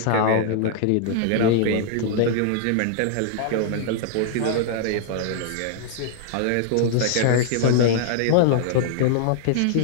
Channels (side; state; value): both; different; correlation -0.01